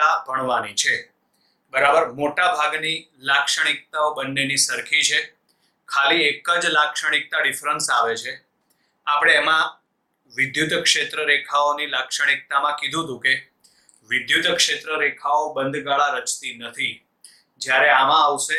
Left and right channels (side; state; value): both; identical; correlation 1.00